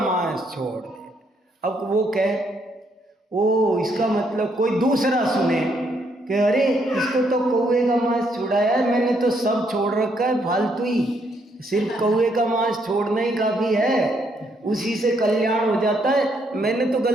छोड़ दे, अब वो कहे ओ इसका मतलब कोई दूसरा सुने कि अरे इसको तो कौवे का मांस छुड़ाया है, मैंने तो सब छोड़ रखा है, फालतू ही, सिर्फ कौवे का मांस छोड़ना ही काफ़ी है, उसी से कल्याण हो जाता है। मैंने तो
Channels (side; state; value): both; normal; correlation 0.73